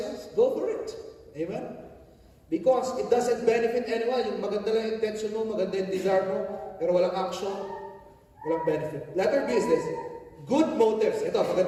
go for it. Amen? Because it doesn't benefit anyone. Yung maganda lang yung intention mo, maganda yung desire mo, pero walang action, walang benefit. Letter B is this. Good motives. Ito,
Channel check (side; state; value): both; identical; correlation 1.00